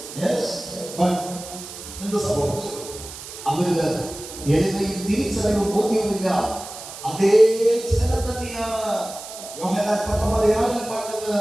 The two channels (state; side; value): noise; right; hiss, 12 dB below the sound